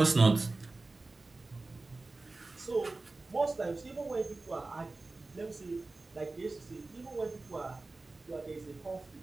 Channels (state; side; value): quieter; left; 3.4 dB